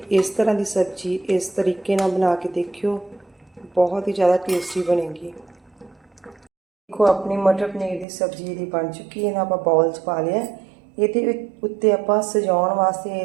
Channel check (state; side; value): drops out; left; at 8.1 s